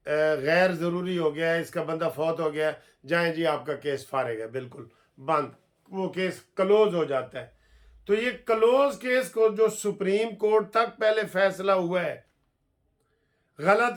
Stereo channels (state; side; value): identical; both; correlation 1.00